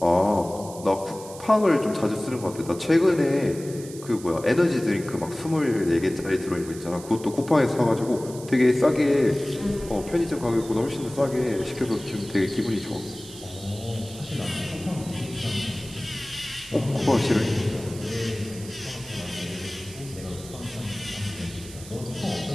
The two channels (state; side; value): noise; right; hiss, 16 dB below the sound